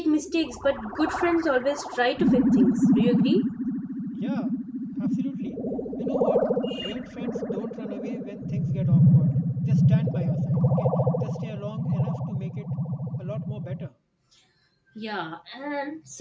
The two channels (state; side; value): identical; both; correlation 1.00